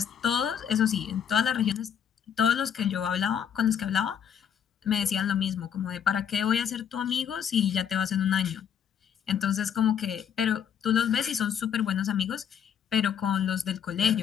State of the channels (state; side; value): quieter; right; 8.3 dB